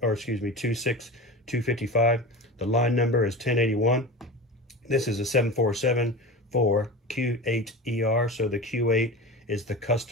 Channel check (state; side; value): normal; both; correlation 0.30